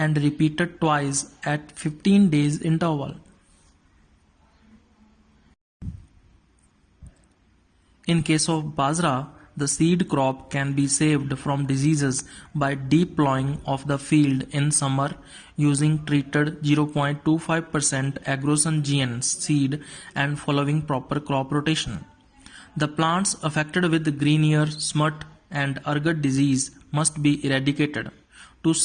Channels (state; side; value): identical; both; correlation 1.00